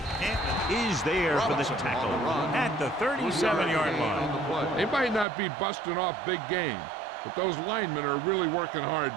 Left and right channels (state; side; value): drops out; left; at 5.2 s